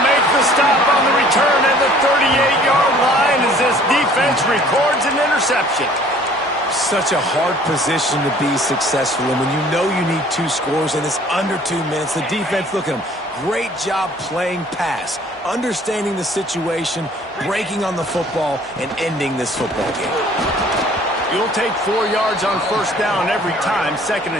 make the stop on the return at the 38-yard line as this defense records an interception. Such a hard position to be successful in when you know you need 2 scores and it's under 2 minutes. The defense, look at them. Great job playing pass, understanding the situation, breaking on the football, and ending this football game. You'll take 4 yards on first down every time, 2nd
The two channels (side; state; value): both; normal; correlation 0.54